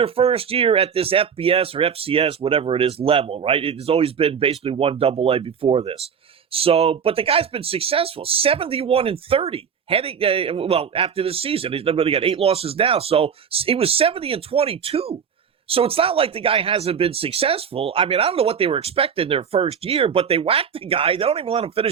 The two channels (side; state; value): left; quieter; 7.2 dB